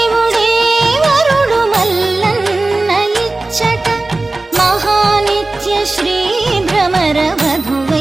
వరుడు మల్లన్న ఇచ్చట మహానిత్య శ్రీ భ్రమర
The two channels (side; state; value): left; quieter; 3.1 dB